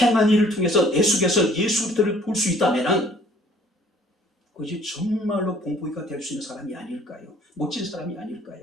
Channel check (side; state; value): both; normal; correlation 0.56